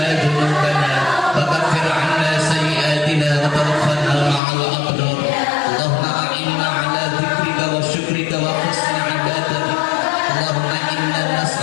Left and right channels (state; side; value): drops out; right; at 4.4 s